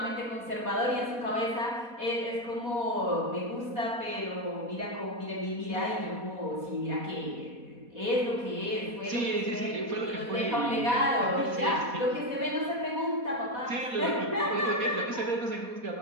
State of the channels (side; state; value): left; late; 4.1 ms